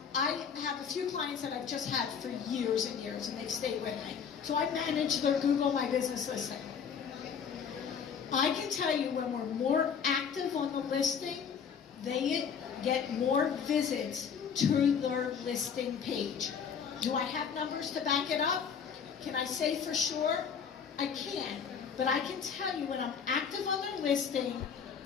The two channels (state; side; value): quieter; right; 6.9 dB